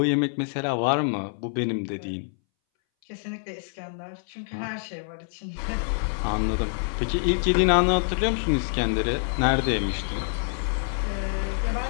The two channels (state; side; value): silent; right; 61 dB below the other